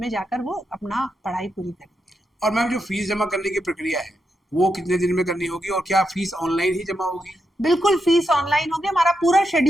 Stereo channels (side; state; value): both; normal; correlation 0.84